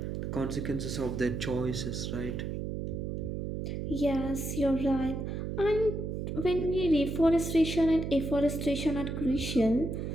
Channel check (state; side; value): noise; right; hum, 4 dB below the sound